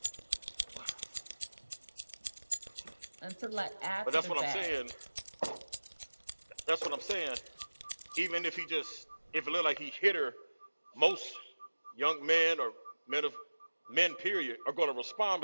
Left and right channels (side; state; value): both; inverted; correlation -1.00